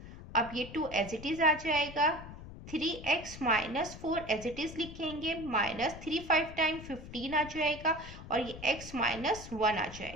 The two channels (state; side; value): noise; left; rumble, 13 dB below the sound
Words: अब ये 2 एज इट इज आ जाएगा, 3x minus 4 as it is लिखेंगे, माइनस 3 5 टाइम 15 आ जाएगा और ये x माइनस 1 आ